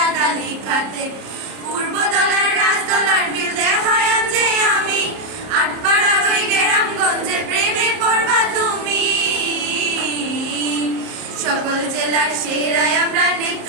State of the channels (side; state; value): left; late; 30 ms